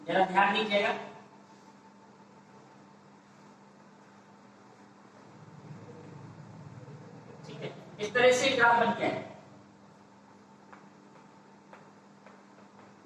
जरा ध्यान दीजिएगा। ठीक है, इस तरह से ग्राफ बन के आएगा।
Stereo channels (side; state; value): both; identical; correlation 1.00